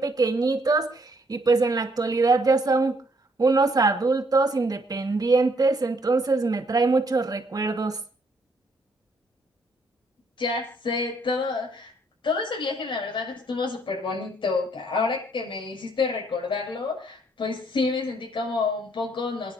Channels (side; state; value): both; normal; correlation 0.68